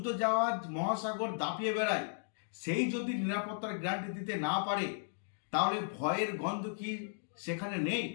জাহাজ মহাসাগর দাপিয়ে বেড়ায়, সেই যদি নিরাপত্তার গ্যারান্টি দিতে না পারে, তাহলে ভয়ের গন্ধ কি সেখানে নেই?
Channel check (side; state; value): right; silent; digital silence